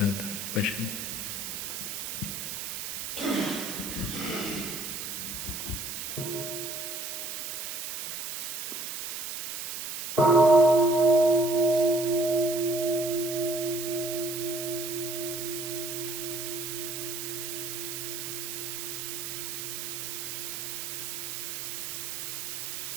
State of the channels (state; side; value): noise; right; hiss, 5 dB below the sound